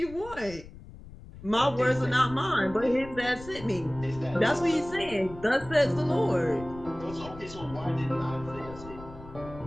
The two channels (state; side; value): noise; left; rumble, 16 dB below the sound